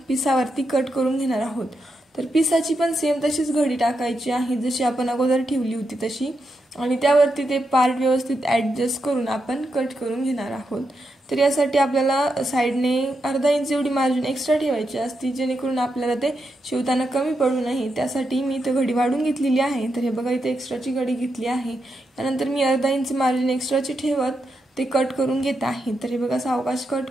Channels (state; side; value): normal; both; correlation 0.84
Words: पिसावरती कट करून घेणार आहोत। तर पिसाची पण सेम तशीच घडी टाकायची आहे जशी आपण अगोदर ठेवली होती तशी, आणि त्यावरती ते पार्ट व्यवस्थित ॲडजस्ट करून आपण कट करून घेणार आहोत। तर यासाठी आपल्याला साईडने अर्धा इंच एवढी मार्जिन एक्स्ट्रा ठेवायची असते जेणेकरून आपल्याला ते शिवताना कमी पडू नये। त्यासाठी मी इथे घडी वाढून घेतलेली आहे। तर हे बघा इथे एक्स्ट्राची घडी घेतली आहे। त्यानंतर मी अर्धा इंच मार्जिन एक्स्ट्राची ठेवत ते कट करून घेत आहे। तर हे बघा सावकाश कट